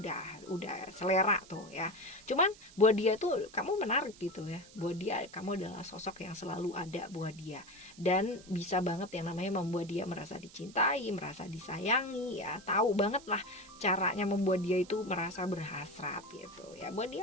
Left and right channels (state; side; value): noise; right; hiss, 21 dB below the sound